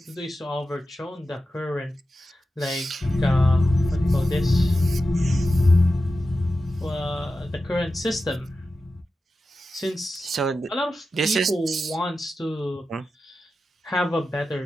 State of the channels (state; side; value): normal; both; correlation 0.92